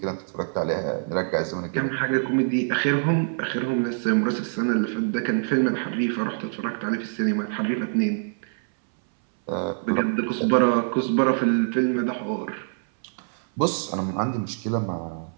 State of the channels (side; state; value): left; silent; 62 dB below the other